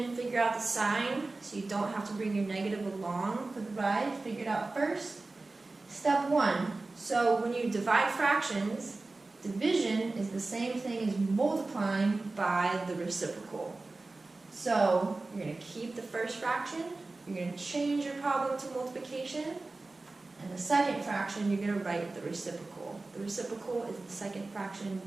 figure out the sign so you don't have to bring your negative along for the ride. Figure it out first. Step 1, so when you divide fractions, division is the same thing as multiplying by the reciprocal. So you're going to keep the first fraction, you're going to change your problem to multiplication, and the second fraction you're going to write the reciprocal. The reciprocal is the second fraction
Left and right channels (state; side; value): quieter; left; 3.3 dB